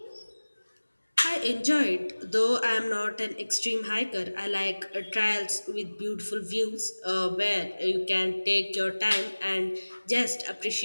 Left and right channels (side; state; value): both; inverted; correlation -1.00